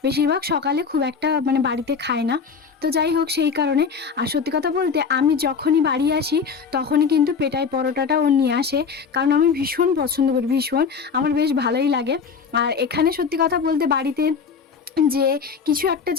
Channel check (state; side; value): quieter; right; 5.9 dB